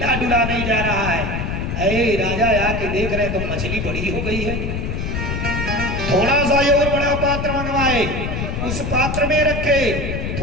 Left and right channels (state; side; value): noise; left; rumble, 3 dB below the sound